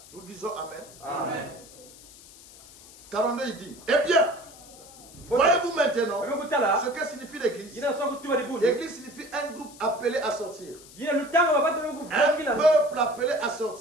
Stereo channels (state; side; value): noise; left; hiss, 20 dB below the sound